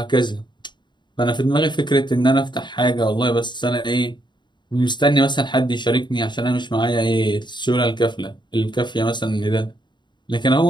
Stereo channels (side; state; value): right; late; 0.22 ms